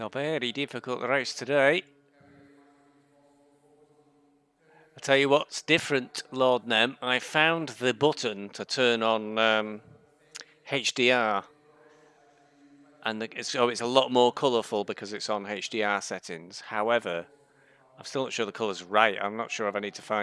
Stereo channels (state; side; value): identical; both; correlation 1.00